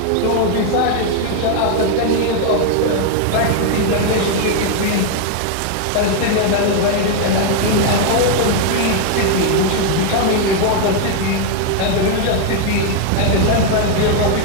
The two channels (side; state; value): both; different; correlation 0.00